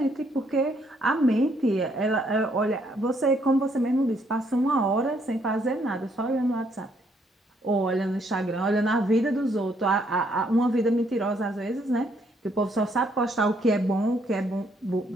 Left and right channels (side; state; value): both; normal; correlation 0.70